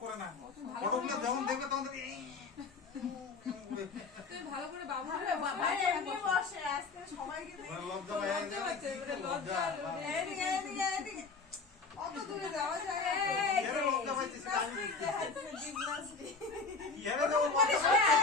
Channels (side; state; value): right; quieter; 4.4 dB